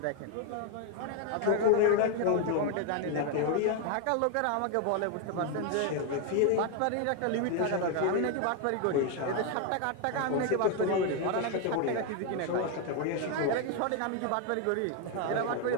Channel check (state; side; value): different; both; correlation 0.01